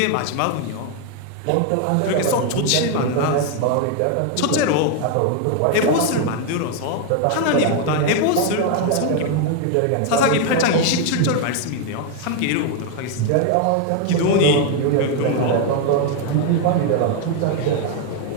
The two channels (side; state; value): both; different; correlation 0.01